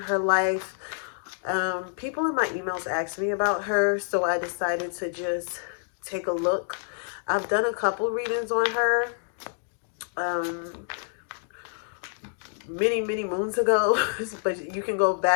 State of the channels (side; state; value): right; silent; digital silence